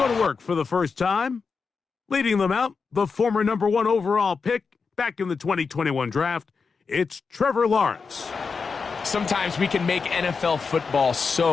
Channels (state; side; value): quieter; right; 5.1 dB